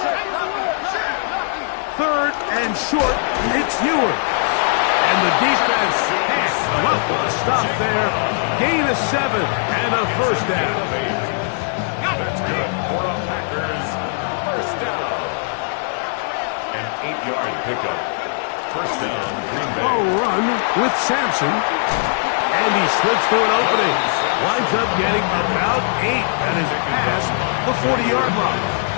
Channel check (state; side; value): silent; right; digital silence